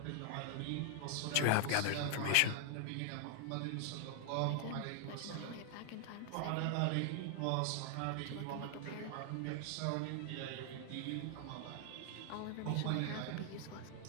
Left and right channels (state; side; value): different; both; correlation 0.00